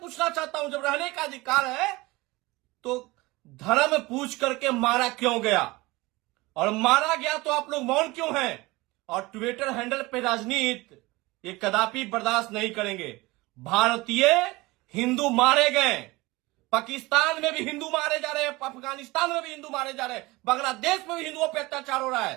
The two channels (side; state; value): left; quieter; 21.7 dB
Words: चाहता हूं जब रहने का अधिकार है तो धर्म पूछ करके मारा क्यों गया? और मारा गया तो आप लोग मौन क्यों हैं? और ट्विटर हैंडल पे राजनीति ये कदापि बर्दाश्त नहीं करेंगे। भारतीय हिंदू मारे गए, पाकिस्तान में भी हिंदू मारे जा रहे हैं, अफगानिस्तान में भी हिंदू मारे जा रहे हैं, बांग्लादेश में भी हिंदुओं पर अत्याचार हो रहा